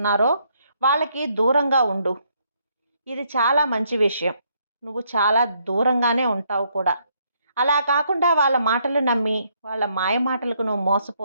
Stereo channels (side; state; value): both; inverted; correlation -0.72